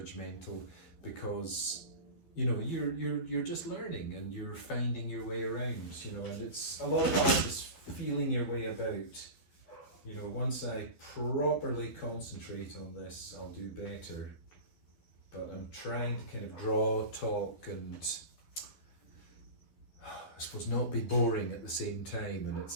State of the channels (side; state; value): right; late; 12 ms